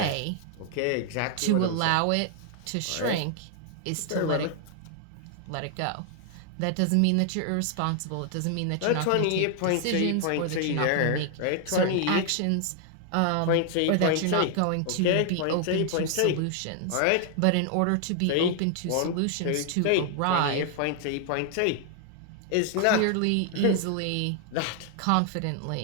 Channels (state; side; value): different; both; correlation 0.00